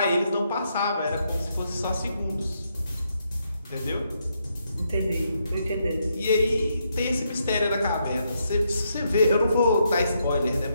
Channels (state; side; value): inverted; both; correlation -0.78